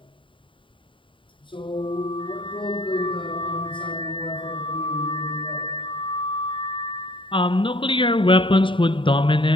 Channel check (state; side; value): late; right; 0.25 ms